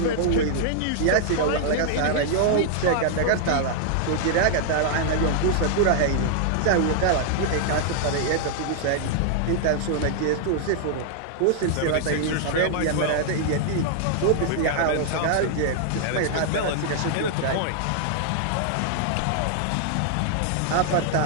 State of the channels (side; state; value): both; different; correlation -0.01